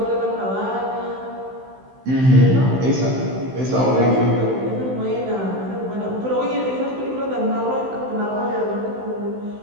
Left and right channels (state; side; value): late; left; 15 ms